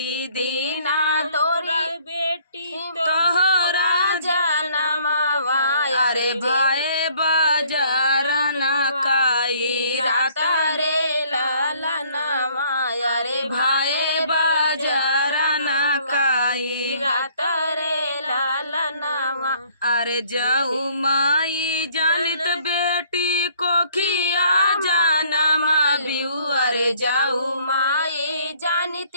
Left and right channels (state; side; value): inverted; both; correlation -0.60